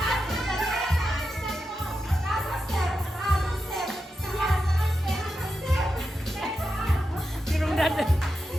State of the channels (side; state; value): both; normal; correlation 0.88